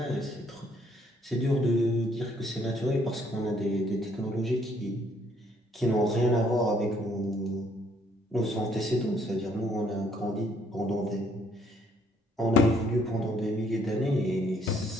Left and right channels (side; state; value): both; normal; correlation 0.66